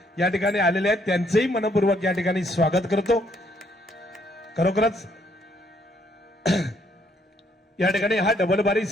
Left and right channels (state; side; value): normal; both; correlation 0.69